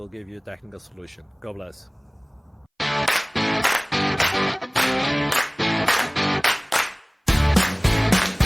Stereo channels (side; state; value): both; identical; correlation 1.00